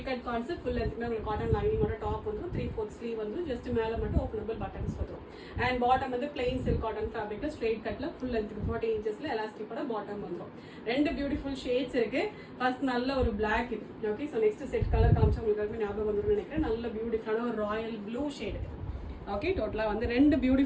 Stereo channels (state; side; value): identical; both; correlation 1.00